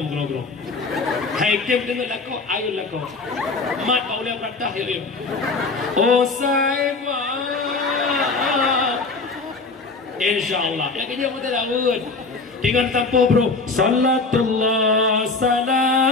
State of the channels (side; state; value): right; quieter; 3.9 dB